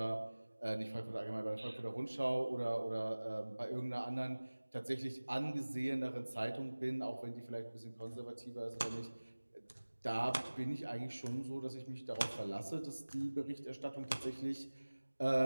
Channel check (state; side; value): inverted; both; correlation -1.00